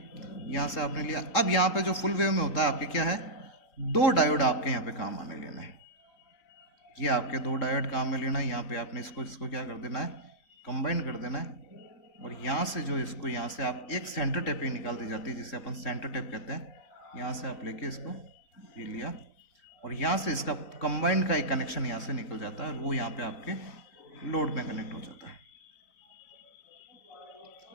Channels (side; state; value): right; late; 3.6 ms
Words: यहाँ से आपने लिया। अब यहाँ पे जो फुल वेव में होता है आपके क्या है, 2 डायोड आपके यहाँ पे काम में लेना है, ये आपके 2 डायोड काम में लेना है। यहाँ पे आपने इसको क्या कर देना है, कंबाइन कर देना है। और यहाँ से जो इसको यहाँ से आप एक सेंटर टेप पे निकाल दी जाती है, जिसे अपन सेंटर टेप कहते हैं। यहाँ से आप लेके इसको ये लिया, और यहाँ से इसका कंबाइंड का एक कनेक्शन यहाँ से निकल जाता है, और वो यहाँ पे आपके लोड में कनेक्ट हो जाता है।